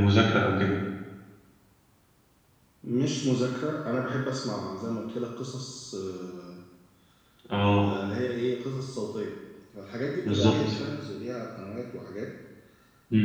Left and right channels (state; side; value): identical; both; correlation 1.00